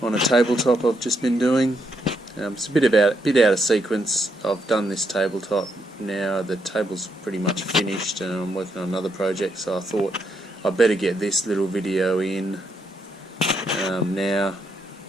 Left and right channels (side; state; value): both; normal; correlation 0.78